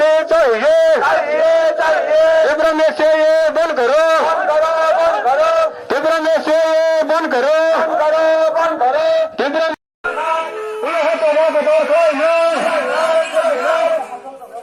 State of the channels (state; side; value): identical; both; correlation 1.00